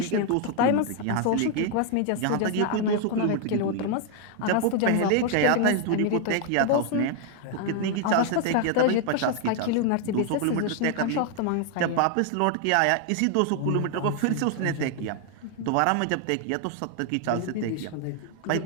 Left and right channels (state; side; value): different; both; correlation 0.00